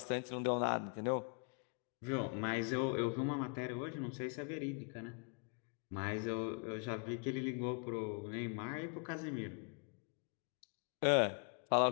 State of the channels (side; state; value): right; quieter; 38.5 dB